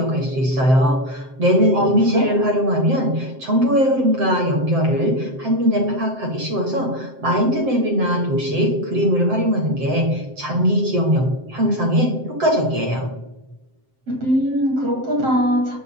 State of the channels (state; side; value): late; left; 7.7 ms